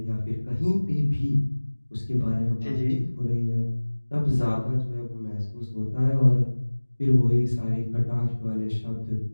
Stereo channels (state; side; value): inverted; both; correlation -1.00